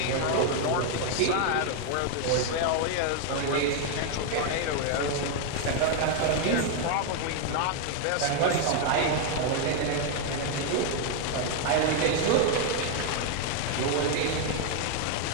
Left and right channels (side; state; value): both; different; correlation 0.00